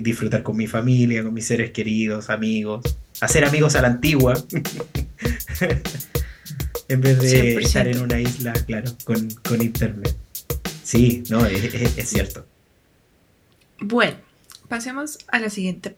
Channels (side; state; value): both; identical; correlation 1.00